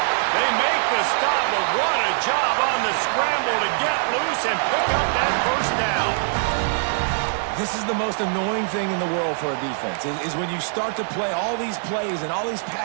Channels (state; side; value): silent; left; 56 dB below the other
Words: They make the stop, but what a job on the scramble to get loose and pick up that first down. This is the most annoying thing in the world for a defense, is when you start to play all these plays and all these